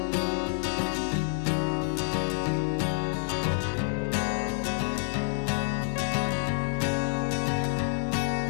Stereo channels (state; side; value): silent; right; digital silence